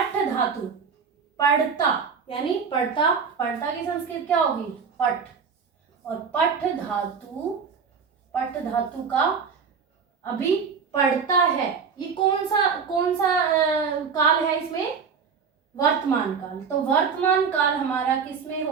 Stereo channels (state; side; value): quieter; left; 6.0 dB